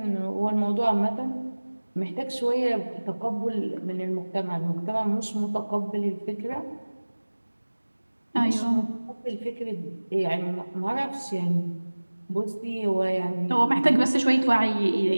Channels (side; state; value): both; inverted; correlation -1.00